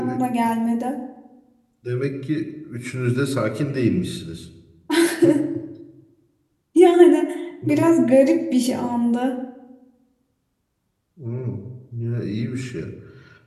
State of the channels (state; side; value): identical; both; correlation 1.00